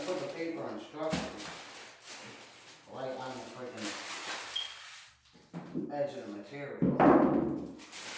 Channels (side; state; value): both; identical; correlation 1.00